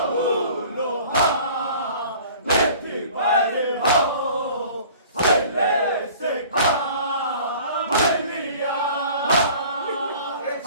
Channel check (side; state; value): both; inverted; correlation -0.47